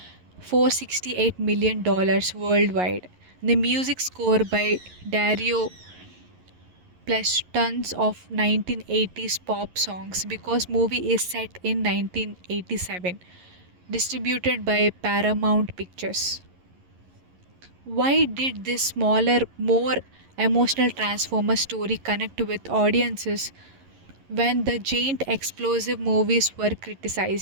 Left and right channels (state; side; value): late; left; 11 ms